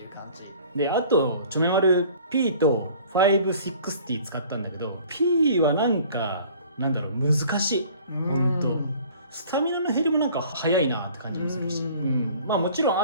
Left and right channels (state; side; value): inverted; both; correlation -0.50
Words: う感じで、あとチョメマル P と560使ったんだけど、 P はなんかなんだろう、難しい。ほんとスタミナの減りもなんか早いなって感じもするし、まあもちろん